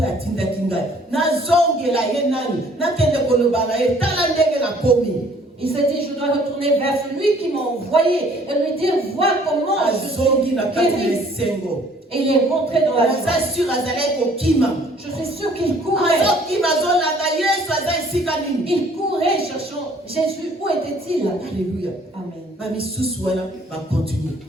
Il s'est dit, je dois retourner vers celui qui m'a envoyé et lui dire, vois comment je suis guéri. Et il est rentré dans la joie. Je suis sûr qu'il courait. Il courait cherchant Jésus. Où était-il? Alléluia. Amen.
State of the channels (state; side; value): normal; both; correlation 0.58